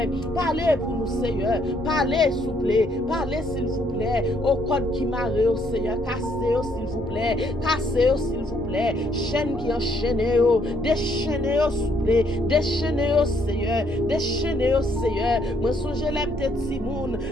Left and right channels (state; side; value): normal; both; correlation 0.69